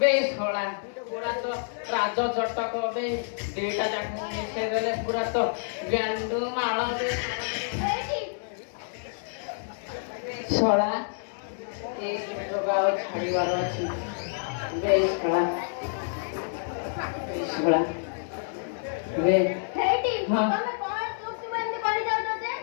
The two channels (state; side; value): silent; right; digital silence